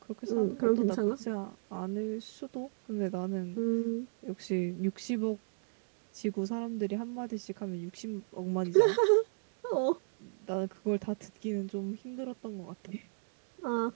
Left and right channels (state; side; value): silent; left; digital silence